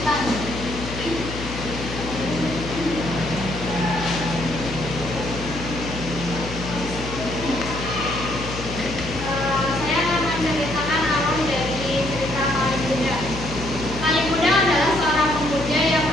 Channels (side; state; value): left; noise; hum, 9 dB below the sound